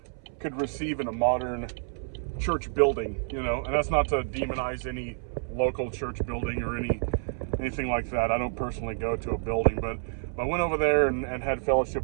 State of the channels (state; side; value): silent; left; 59 dB below the other